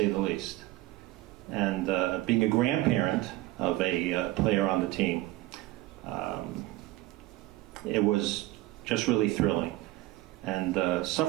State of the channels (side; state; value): left; quieter; 17.6 dB